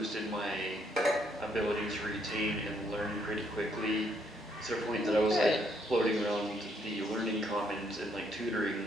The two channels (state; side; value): normal; both; correlation 0.71